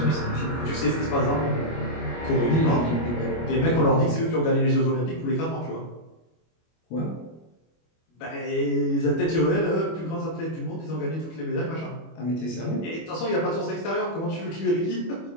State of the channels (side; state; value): right; late; 25 ms